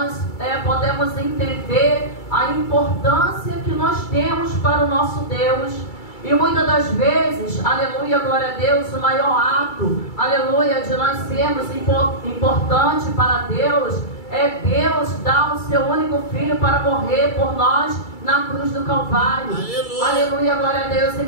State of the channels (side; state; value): right; late; 2.3 ms